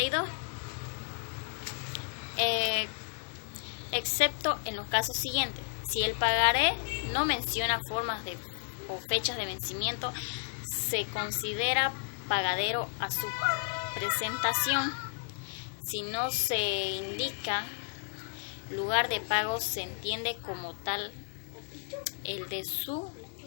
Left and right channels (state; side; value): silent; right; 56 dB below the other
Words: excepto en los casos siguientes: si el pagaré no menciona formas o fechas de vencimiento, se considera pagadero a su presentación. Si no se indica lugar de pago, se entiende como tal el de su